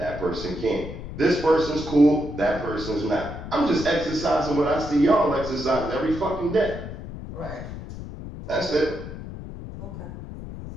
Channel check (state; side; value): noise; left; rumble, 10 dB below the sound